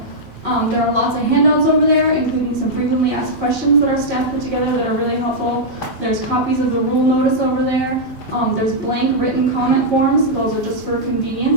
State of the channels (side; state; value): both; normal; correlation -0.07